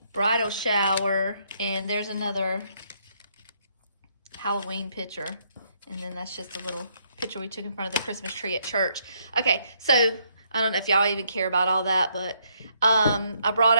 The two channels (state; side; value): inverted; both; correlation -0.72